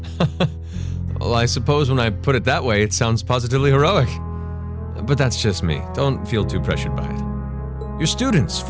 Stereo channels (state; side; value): identical; both; correlation 1.00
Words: Well, I suppose when I put it that way, it sounds positively heroic. But that's just me. Don't feel too pressured by it. Your students,